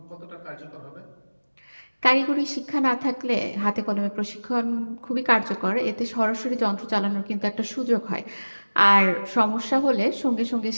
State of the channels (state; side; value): inverted; both; correlation -1.00